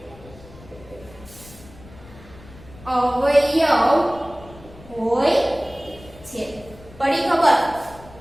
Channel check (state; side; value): noise; left; rumble, 20 dB below the sound